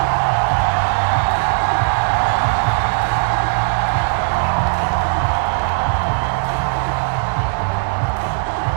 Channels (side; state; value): left; silent; digital silence